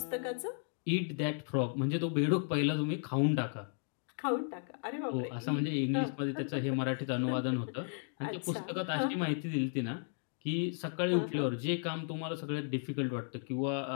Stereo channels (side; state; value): right; silent; 55 dB below the other